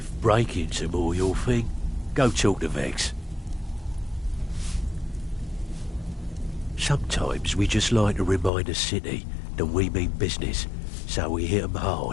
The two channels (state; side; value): drops out; right; at 8.5 s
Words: break-ins are more your thing, go talk to Vex. Sometimes we just like to remind the city that we mean business, so we hit 'em